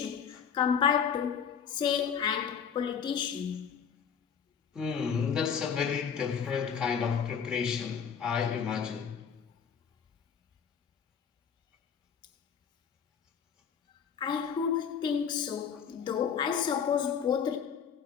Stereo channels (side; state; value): right; quieter; 7.2 dB